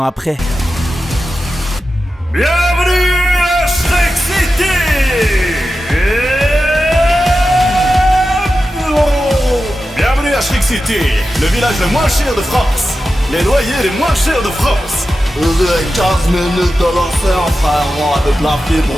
après. Bienvenue à Shrek City. Bienvenue à Shrek City, le village le moins cher de France. Les loyers les moins chers de France. 15 minutes de l'enfer, frère, avec la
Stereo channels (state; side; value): normal; both; correlation 0.92